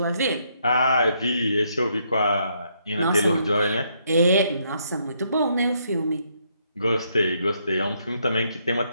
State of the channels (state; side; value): inverted; both; correlation -0.73